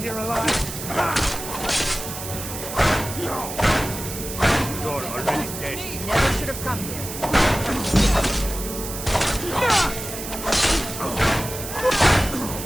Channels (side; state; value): right; noise; hiss, 8 dB below the sound